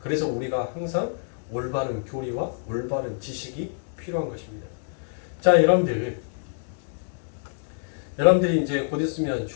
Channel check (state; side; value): silent; right; digital silence